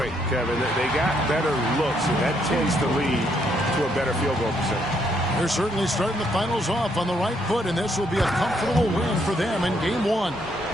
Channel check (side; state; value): both; normal; correlation 0.73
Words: Kevin. They got better looks, and that tends to lead to a better field goal percentage. They're certainly starting the finals off on the right foot, and this will be a comfortable win for them in game one.